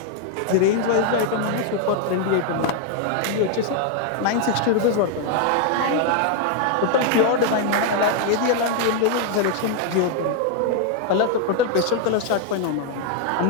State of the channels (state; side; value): different; both; correlation 0.00